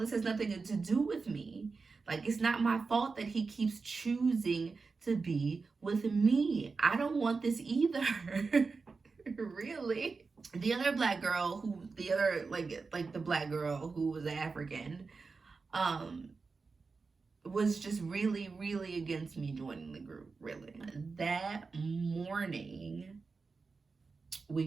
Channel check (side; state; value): left; quieter; 4.4 dB